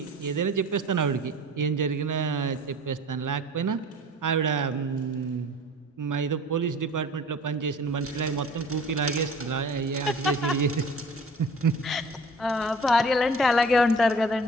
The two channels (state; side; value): normal; both; correlation 0.45